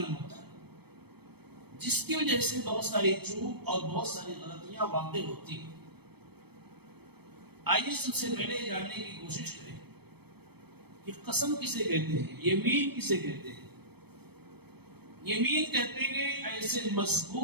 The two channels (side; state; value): left; late; 0.97 ms